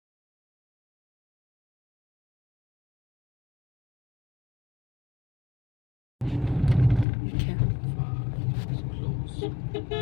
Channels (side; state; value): right; drops out; at 7.1 s